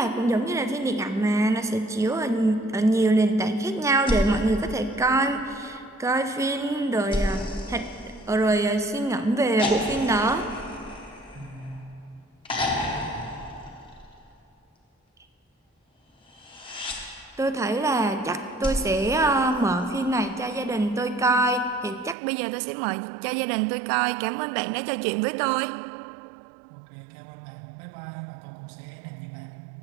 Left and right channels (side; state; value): left; drops out; at 22.2 s